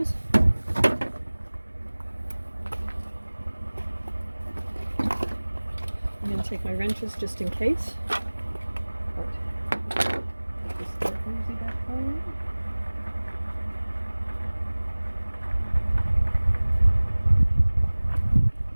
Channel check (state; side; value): inverted; both; correlation -1.00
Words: I'm going to take my wrenches just in case. But put this little hosey back on.